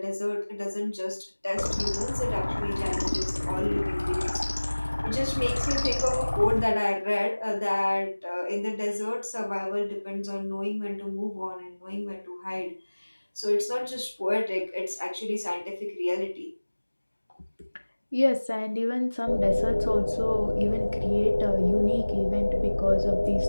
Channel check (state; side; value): inverted; both; correlation -1.00